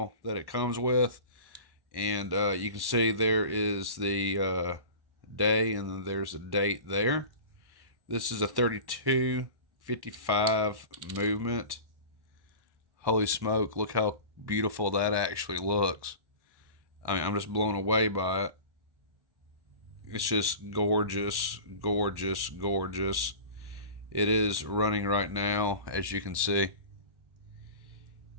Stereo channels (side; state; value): left; late; 1.1 ms